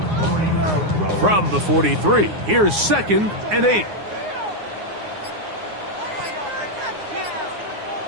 8. From the 43, here's 2nd and 8.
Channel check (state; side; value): late; left; 9.6 ms